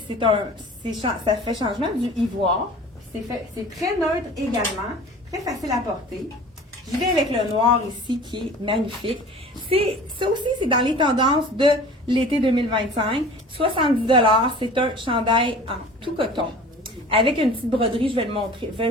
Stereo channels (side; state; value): both; normal; correlation 0.42